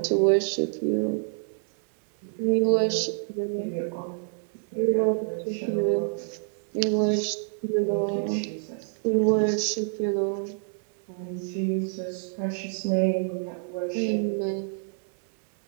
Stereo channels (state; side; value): silent; left; 60 dB below the other